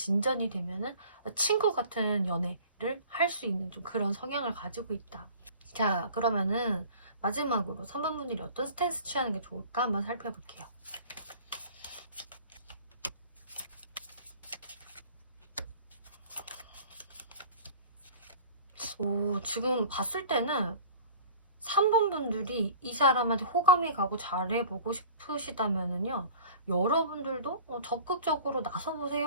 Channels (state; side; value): inverted; both; correlation -0.45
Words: 되면은 친구 같은 연애를 할 수 있는 좀 그런 성향을 가지고 있다. 자, 그러면은 마지막으로 3번 분들이 어떤 스탠스 취하는 게 좋을까 한번 살펴볼게요. 지금 봤을 때는 3번 분들이 이 사람한테 호감이 가고 잘해보고 싶으시다면은요, 여러분들도 적극적으로